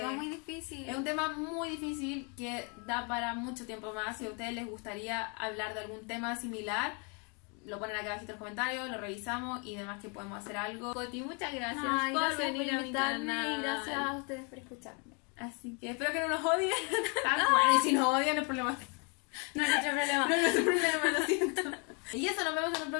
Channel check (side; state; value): right; quieter; 34.6 dB